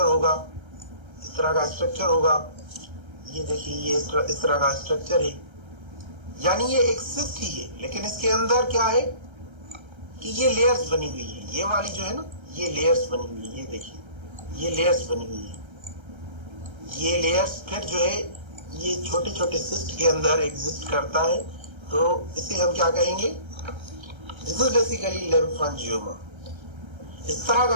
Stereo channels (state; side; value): late; left; 1.3 ms